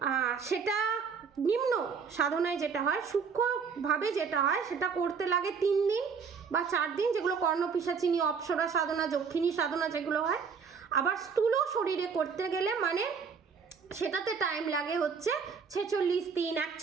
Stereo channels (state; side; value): quieter; left; 5.9 dB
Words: সেটা নিম্ন সাধনায় যেটা হয়, সূক্ষ্মভাবে যেটা হয়, সেটা করতে লাগে 3 দিন বা 4 দিন, যেগুলো কর্ণপিশাচিনী, অপ্সরা সাধনা, যক্ষিণী সাধনা যেগুলো হয়। আবার স্থূল শরীরে করতে গেলে মানে সেটাতে টাইম লাগে হচ্ছে 46 দিন,